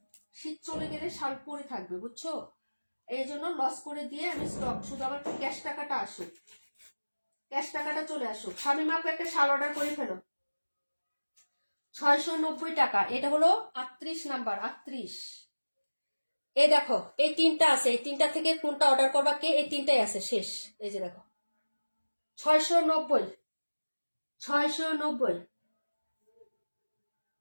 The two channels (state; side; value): inverted; both; correlation -1.00